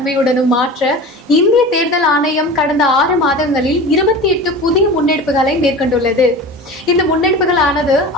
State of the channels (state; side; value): normal; both; correlation 0.34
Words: மாற்ற இந்திய தேர்தல் ஆணையம் கடந்த 6 மாதங்களில் 28 புதிய முன்னெடுப்புகளை மேற்கொண்டுள்ளது. இந்த முன்னெடுப்புகளானது